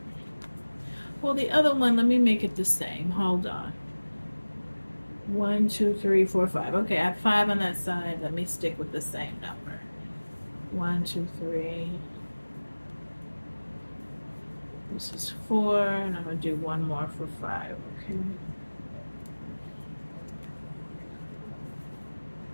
Well, the other one, let me make it the same. Hold on. 1, 2, 3, 4, 5. Okay, I have 5 on that side. Let me stick with the same number. 1, 2, 3. This is 4, and I'm gonna do one more for 5. Okay.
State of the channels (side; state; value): both; inverted; correlation -1.00